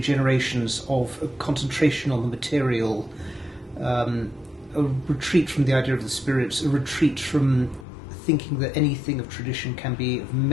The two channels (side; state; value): right; drops out; at 7.9 s